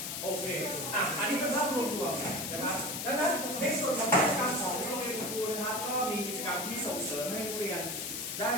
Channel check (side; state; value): left; noise; hiss, 4 dB below the sound